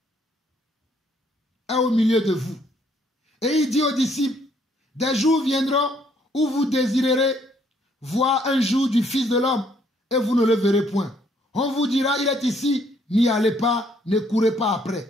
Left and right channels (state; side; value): normal; both; correlation 0.67